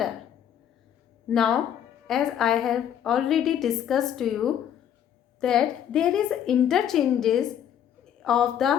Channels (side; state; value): right; quieter; 9.7 dB